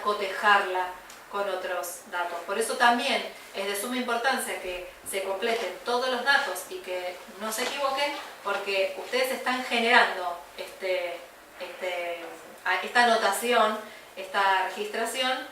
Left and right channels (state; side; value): identical; both; correlation 1.00